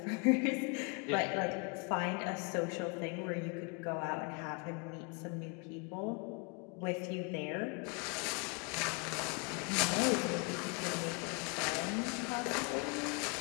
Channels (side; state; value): right; quieter; 33.6 dB